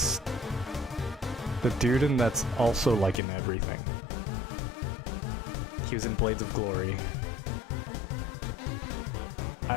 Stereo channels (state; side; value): drops out; right; at 3.2 s